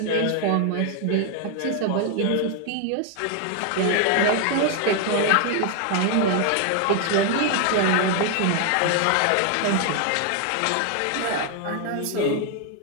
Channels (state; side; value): different; both; correlation 0.00